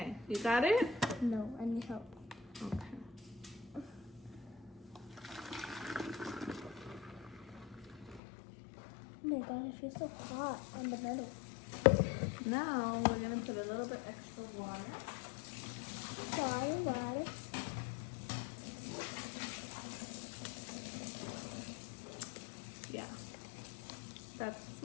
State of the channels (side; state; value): right; drops out; at 8.2 s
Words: you got it? No, I need help. Okay. Oh my god, it feels so hot on the middle. Now we're gonna put a little bit extra water. Sorry, water. Yeah. That's